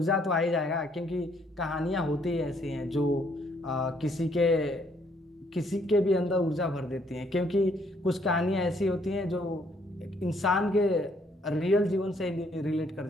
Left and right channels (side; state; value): both; normal; correlation 0.67